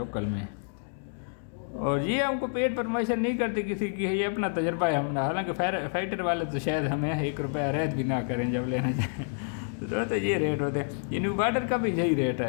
میں۔ اور یہ ہم کو پیٹ پرموشن نہیں کرتے کسی کی، یہ اپنا تجربہ ہے ہم نے، حالانکہ فائٹر والے تو شاید ہمیں 1 روپیہ رعایت بھی نہ کریں جب لینا چاہیں تو یہ ریٹ ہوتے ہیں۔ یہ نیو بارڈر کا بھی یہی ریٹ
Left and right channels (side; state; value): right; silent; digital silence